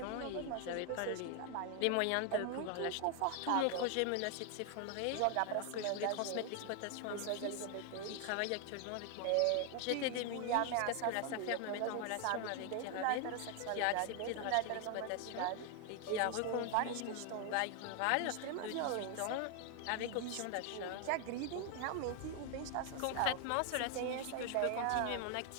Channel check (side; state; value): both; different; correlation 0.00